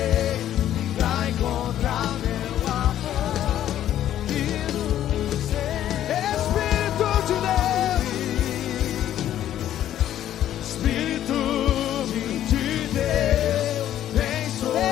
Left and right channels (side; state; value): right; quieter; 11.7 dB